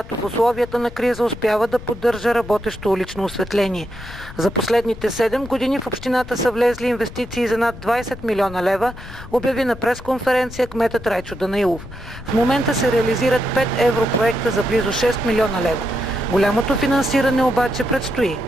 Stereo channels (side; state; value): left; noise; rumble, 14 dB below the sound